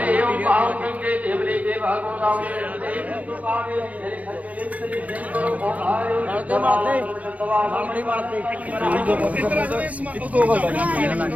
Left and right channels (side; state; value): left; late; 0.068 ms